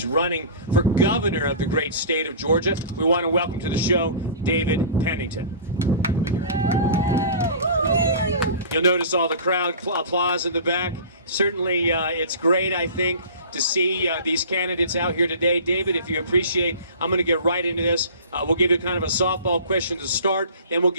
running for governor of the great state of Georgia. We want to welcome to the show David Pennington. You'll notice all the crowd applause in the back. Certainly, it's great, I think, to see these candidates out here today. David, if you appreciate, I'm going to get right into this. We'll give you kind of a softball question to start, then we'll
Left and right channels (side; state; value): both; inverted; correlation -0.39